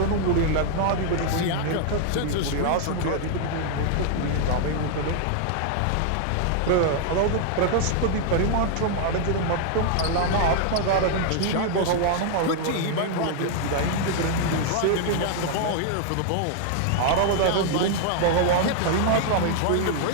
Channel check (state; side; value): different; both; correlation 0.00